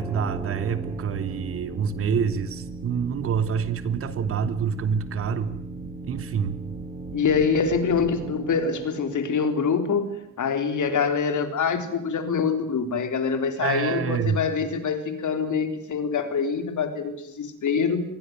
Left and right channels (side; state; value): both; normal; correlation 0.09